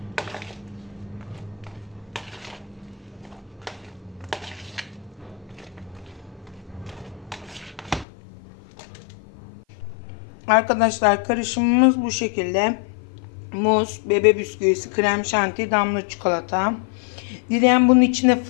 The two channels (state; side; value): drops out; right; at 8.1 s